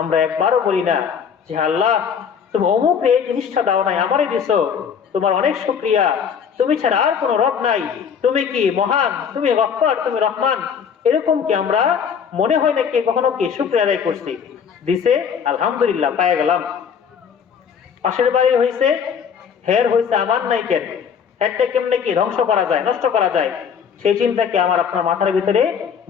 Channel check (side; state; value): right; quieter; 7.2 dB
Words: আমরা একবারও বলি না যে আল্লাহ তুমি অমুক এই জিনিসটা দাও নাই, আমারই দিছো, তোমার অনেক শুকরিয়া, তুমি ছাড়া আর কোনো রব নাই, তুমি কি মহান, তুমি গফফার, তুমি রহমান। এরকম কি আমরা মনে হয় না কি কখনো কি শুকরিয়া আদায় করছি, দিছে আলহামদুলিল্লাহ পায়ে গেলাম, পাশের বাড়ি হয়েছে হের হয়েছে আমার নাই কেন, হেরটা কেমনে কি ধ্বংস করা যায়, নষ্ট করা যায়, সেই চিন্তা কি আমার আপনার মাথার ভিতরে